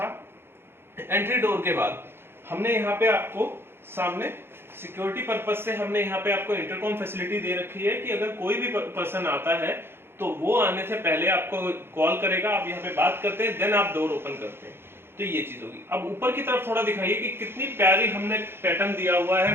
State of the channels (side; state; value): left; late; 0.11 ms